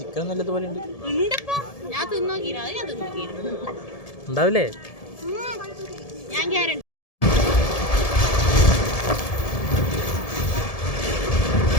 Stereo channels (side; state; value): right; late; 1.7 ms